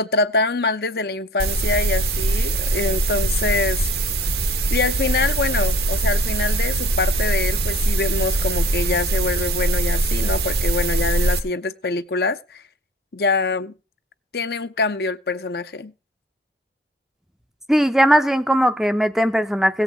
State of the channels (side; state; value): both; normal; correlation 0.53